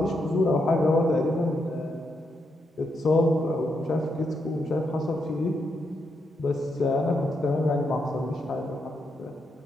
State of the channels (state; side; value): normal; both; correlation 0.81